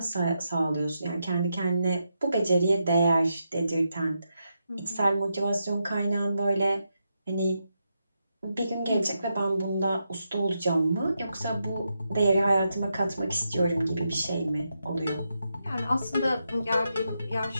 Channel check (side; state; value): both; inverted; correlation -0.84